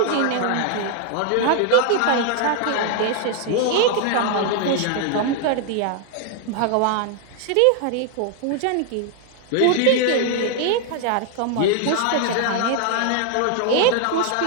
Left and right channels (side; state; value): both; different; correlation 0.00